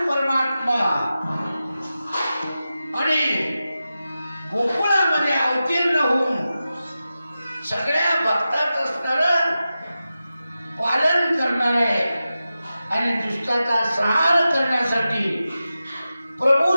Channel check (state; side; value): inverted; both; correlation -0.93